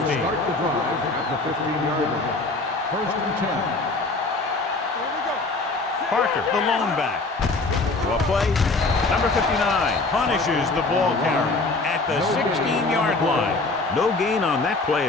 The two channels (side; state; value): right; quieter; 3.4 dB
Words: start the drive at the 15-yard line. First and 10. Here we go. Parker, the lone back. What play? Number 59 punishes the ball carrier at the 16-yard line. No gain on that play